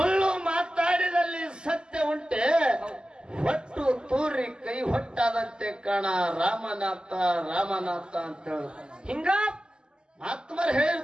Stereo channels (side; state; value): left; late; 0.047 ms